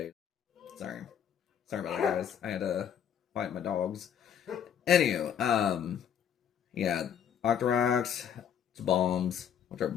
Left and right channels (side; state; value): right; quieter; 8.7 dB